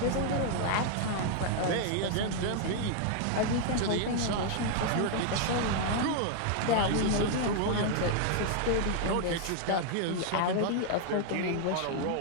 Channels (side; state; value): both; different; correlation 0.00